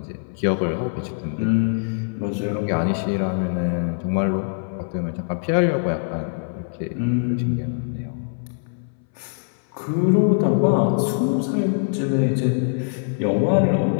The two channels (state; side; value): silent; right; 60 dB below the other